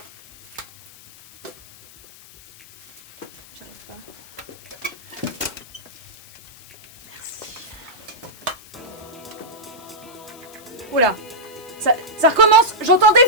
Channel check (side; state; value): left; noise; hiss, 22 dB below the sound